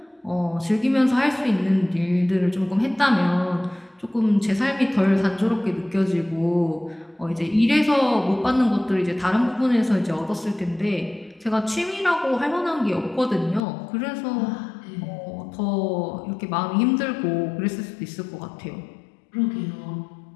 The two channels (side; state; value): right; drops out; at 13.6 s